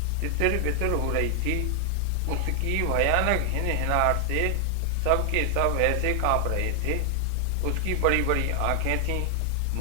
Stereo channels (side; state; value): both; different; correlation 0.00